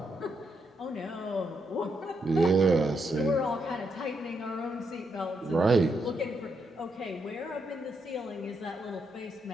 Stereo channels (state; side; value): normal; both; correlation 0.79